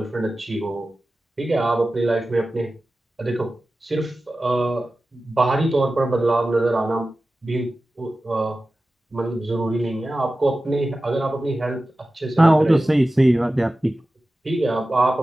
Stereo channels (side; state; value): both; normal; correlation 0.95